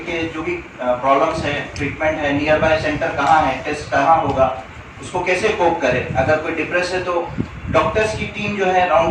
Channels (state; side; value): identical; both; correlation 1.00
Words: के जो भी प्रॉब्लम्स है, ट्रीटमेंट है, नियर बाय सेंटर कहाँ है, टेस्ट कहाँ होगा, उसको कैसे कोप करे. अगर कोई डिप्रेस है तो डॉक्टर्स की टीम जो है